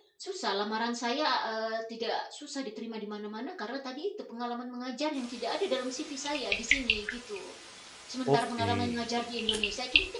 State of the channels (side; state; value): both; identical; correlation 1.00